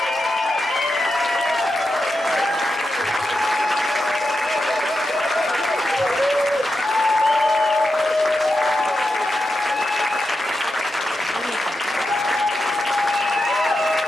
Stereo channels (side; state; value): both; normal; correlation 0.88